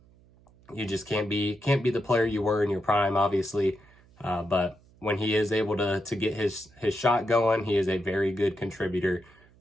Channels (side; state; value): right; noise; hum, 28 dB below the sound